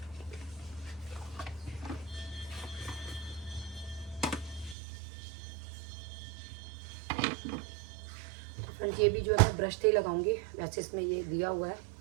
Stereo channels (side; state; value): left; drops out; at 4.8 s